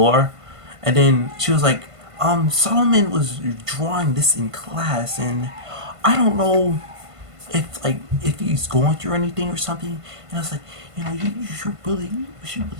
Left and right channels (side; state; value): left; late; 1.5 ms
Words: And then she was like, Solomon was drawing this in class, and I don't know if he's going through anything or something. And I was like, you should really